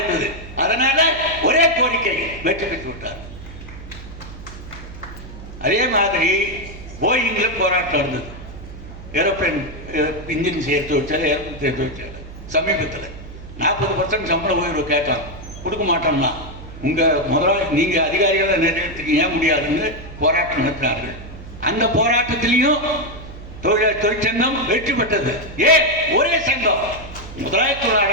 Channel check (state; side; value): noise; right; hum, 14 dB below the sound